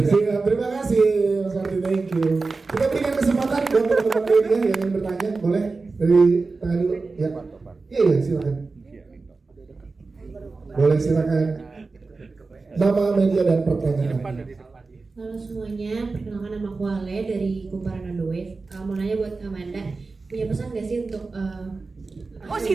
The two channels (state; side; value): quieter; left; 3.9 dB